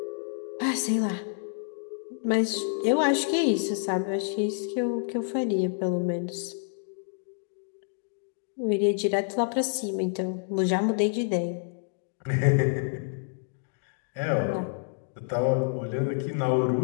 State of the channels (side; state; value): right; silent; digital silence